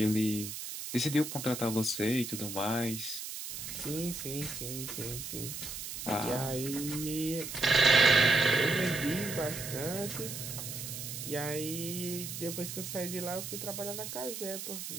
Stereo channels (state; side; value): noise; right; hiss, 7 dB below the sound